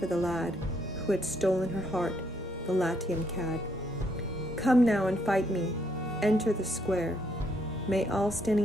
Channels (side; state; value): both; normal; correlation 0.72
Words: the lad who had stolen her heart, the Latian cad. Come now and fight me, enter the square. May all